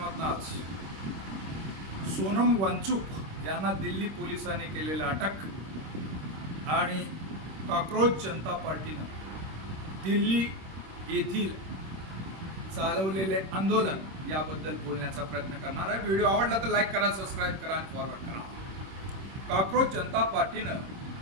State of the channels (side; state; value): left; late; 26 ms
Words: आज सोनम वांचूक यांना दिल्ली पोलिसांनी केलेला अटक आणि कॉकरोच जनता पार्टीनं दिल्ली येथील चालवलेले आंदोलन याबद्दल बोलण्याचा प्रयत्न करणार आहे। व्हिडिओ आवडला तर लाईक करा, सबस्क्राईब करा आणि फॉरवर्ड करा। कॉकरोच जनता पार्टीनं